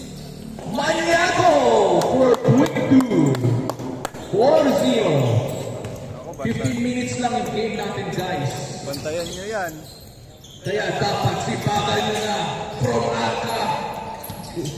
Manyago for quick 2. 4-0. 15 minutes lang yung game natin, guys. Bantayan nyo yan. Kaya dapat sipagan nyo na from Arca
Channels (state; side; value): identical; both; correlation 1.00